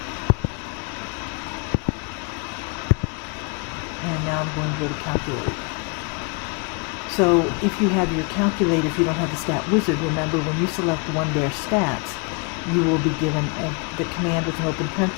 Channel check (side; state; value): right; quieter; 34.4 dB